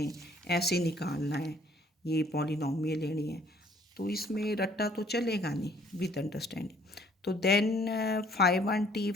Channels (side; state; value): both; normal; correlation 0.60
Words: ऐसे निकालना है, ये पॉलिनोमियल लेनी है, तो इसमें रट्टा तो चलेगा नहीं विद अंडरस्टैंडिंग। तो then phi 1t,